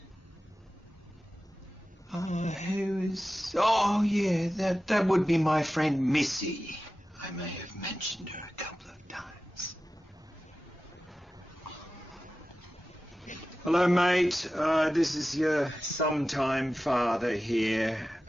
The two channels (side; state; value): both; normal; correlation 0.94